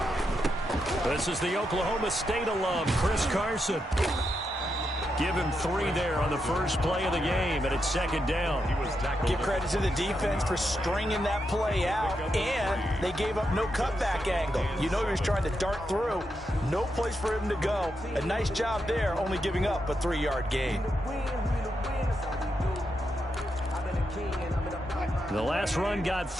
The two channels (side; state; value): both; normal; correlation 0.84